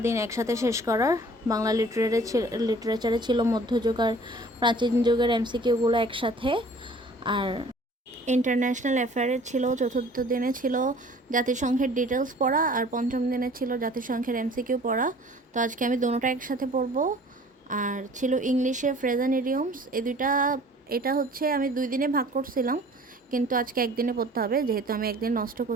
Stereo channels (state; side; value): normal; both; correlation 0.50